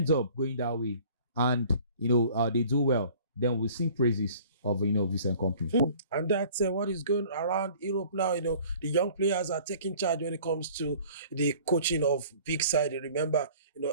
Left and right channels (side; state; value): both; inverted; correlation -0.50